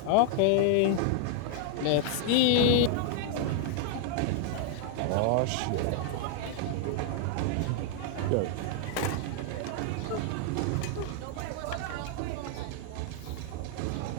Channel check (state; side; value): different; both; correlation 0.00